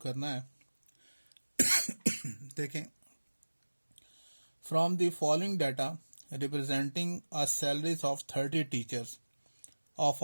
है। देखें, from the following data representing a salaries of 30 teachers of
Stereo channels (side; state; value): both; inverted; correlation -1.00